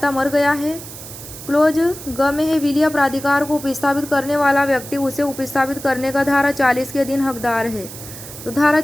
मर गया है। क्लोज ग में है विल या प्राधिकार को उपस्थापित करने वाला व्यक्ति उसे उपस्थापित करने का धारा 40 के अधीन हकदार है। तो धारा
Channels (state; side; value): noise; right; hiss, 13 dB below the sound